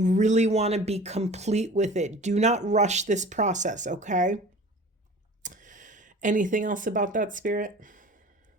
really want to be complete with it. Do not rush this process, okay? Anything else about that, Spirit?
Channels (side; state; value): both; normal; correlation 0.42